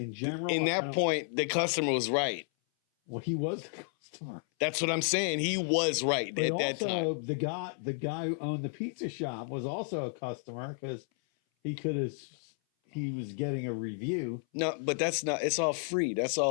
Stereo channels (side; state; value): right; silent; 56 dB below the other